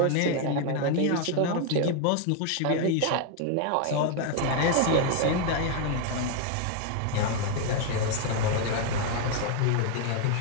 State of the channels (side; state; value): both; different; correlation 0.01